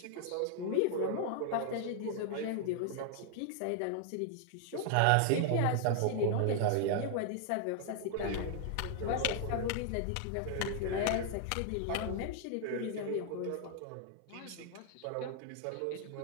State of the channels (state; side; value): different; both; correlation 0.00